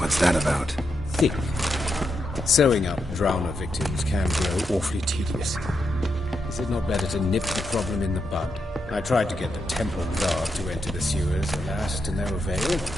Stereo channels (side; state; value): both; normal; correlation 0.84